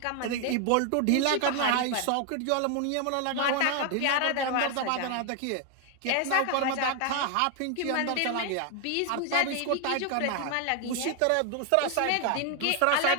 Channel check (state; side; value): different; both; correlation 0.00